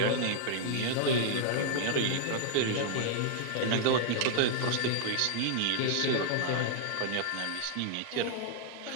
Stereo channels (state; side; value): different; both; correlation -0.01